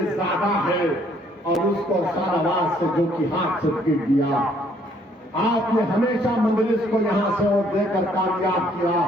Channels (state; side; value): normal; both; correlation 0.65